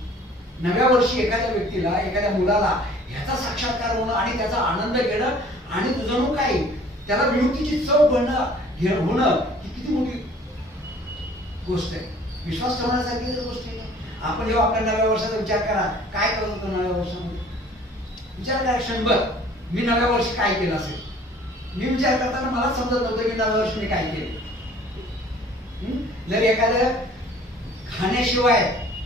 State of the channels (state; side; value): normal; both; correlation 0.52